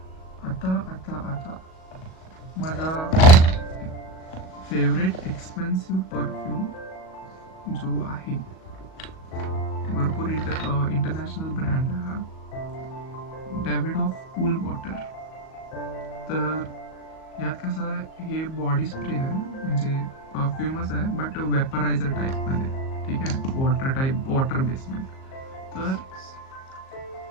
आता माझा फेवरेट एक्सपेन्सिव्ह परफ्यूम जो आहे, भरपूर इंटरनॅशनल ब्रँड आहे हा, डेव्हिड ऑफ कूल वॉटर. तर यात कसं आहे, हे बॉडी स्प्रे आहे, म्हणजे परफ्यूमच आहे बट वेपरायझर टाईपमध्ये, ठीक आहे, वॉटर बेसमध्ये. तर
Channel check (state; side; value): late; right; 38 ms